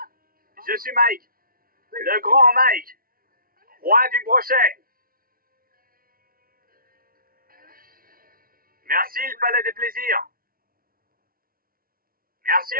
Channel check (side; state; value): left; late; 0.42 ms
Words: Je suis Mike, le grand Mike, roi du brochet. Merci le Palais des Plaisirs. Merci